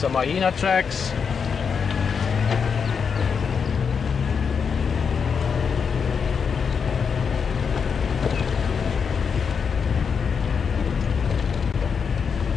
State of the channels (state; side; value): quieter; right; 6.3 dB